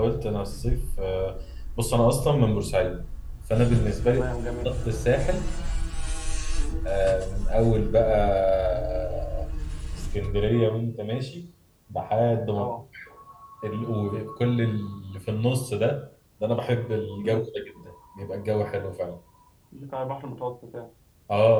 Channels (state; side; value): identical; both; correlation 1.00